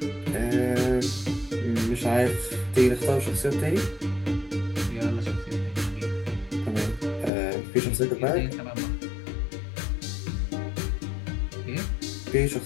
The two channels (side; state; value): right; drops out; at 7.3 s